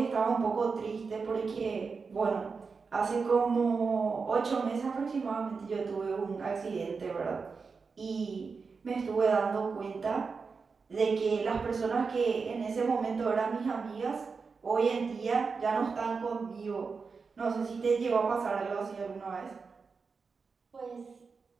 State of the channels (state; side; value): quieter; left; 4.9 dB